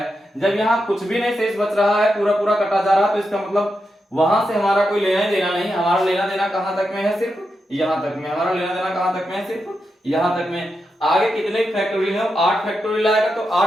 जब यहाँ कुछ भी नहीं शेष बच रहा है, पूरा पूरा कटा जा रहा है, तो इसका मतलब वहां से हमारा कोई लेना ही देना नहीं। हमारा लेना देना कहां तक में है, सिर्फ यहां तक में। हमारा लेना देना कहां तक में है, सिर्फ यहां तक में। आगे कितने फैक्टोरियल है 8 फैक्टोरियल आएगा, तो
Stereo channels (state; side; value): normal; both; correlation 0.87